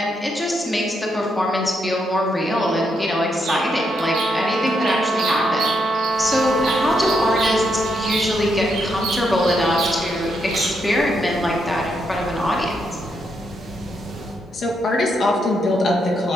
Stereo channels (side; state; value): both; normal; correlation 0.79